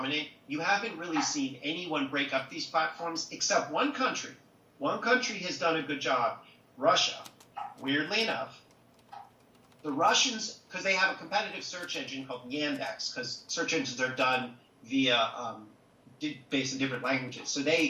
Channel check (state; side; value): identical; both; correlation 1.00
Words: You haven't really seen anyone break up these platforms except one country. One country has done a good job, Russia. Weirdly enough, the Russians, because they have a competitive search engine called Yandex, because search engines are done via based in different languages. So